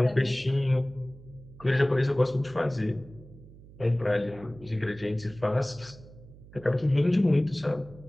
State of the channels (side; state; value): right; noise; hum, 20 dB below the sound